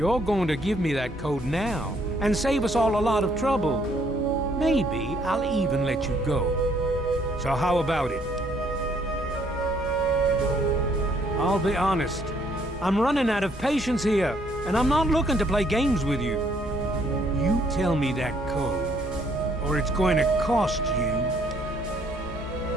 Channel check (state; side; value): normal; both; correlation 0.66